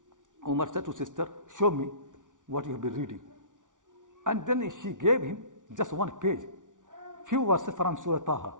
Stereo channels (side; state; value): left; late; 0.87 ms